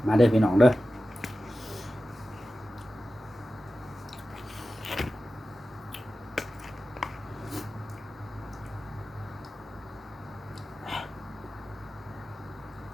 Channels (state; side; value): normal; both; correlation 0.94